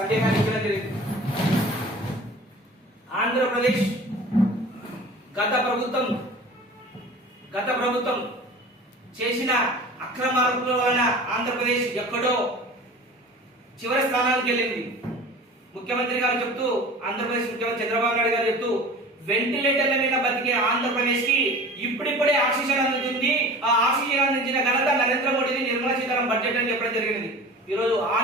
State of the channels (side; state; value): both; normal; correlation 0.39